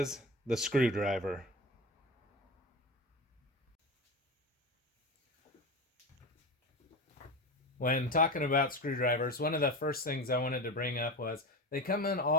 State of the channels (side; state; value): both; normal; correlation 0.24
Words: the screwdriver. When talking about screwdrivers, one of the first things I wanted to bring up was they come in